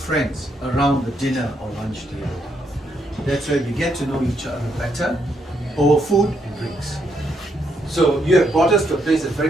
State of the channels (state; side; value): normal; both; correlation 0.76